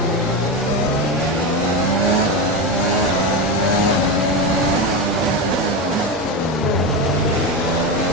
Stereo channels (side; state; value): both; normal; correlation 0.16